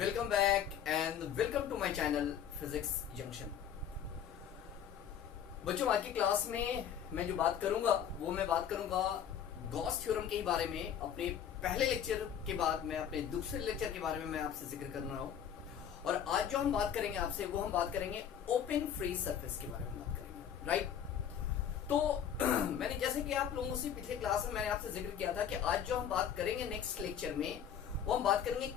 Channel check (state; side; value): quieter; right; 8.9 dB